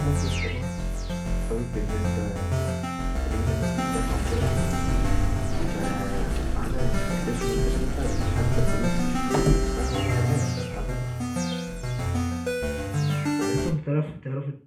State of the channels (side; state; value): both; identical; correlation 1.00